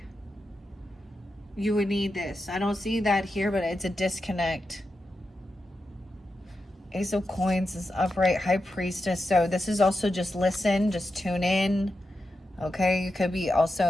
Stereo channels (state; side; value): normal; both; correlation 0.89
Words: you would need this. I don't see that here, but it's a disconnect. Ace of Coins is upright, High Priestess. So this is also just listen, just tune in, okay? You could be